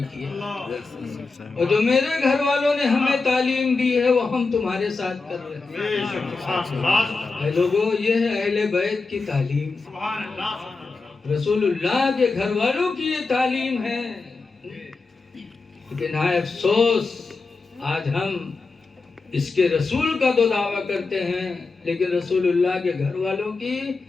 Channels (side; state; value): right; quieter; 4.0 dB